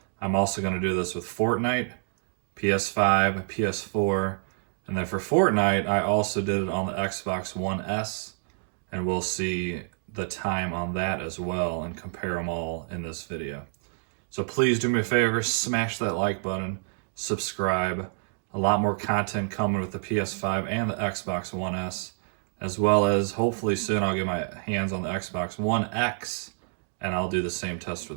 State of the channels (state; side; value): silent; left; digital silence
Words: I'm also going to do this with Fortnite, PS5, PS4, and then for Fortnite, I also did it on the Xbox One S, and we'll see the time on that as well and compare them all in this video. So please do me a favor, smash that like button, subscribe. A lot more content coming with the PS5 and the Xbox One S, as well as hopefully soon I'll get my hands on the Xbox One X, and I'll do the same test